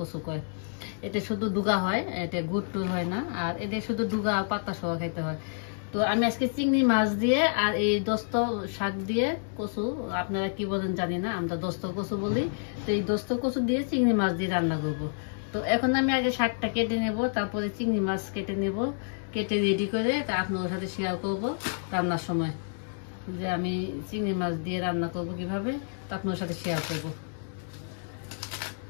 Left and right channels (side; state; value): right; silent; digital silence